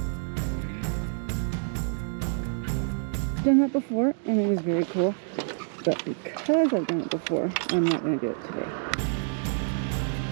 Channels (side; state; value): left; silent; digital silence